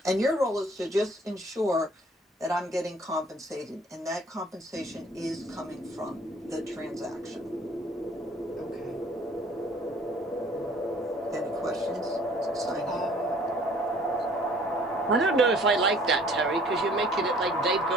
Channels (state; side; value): normal; both; correlation 0.55